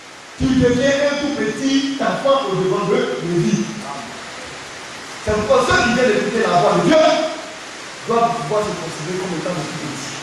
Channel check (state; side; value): identical; both; correlation 1.00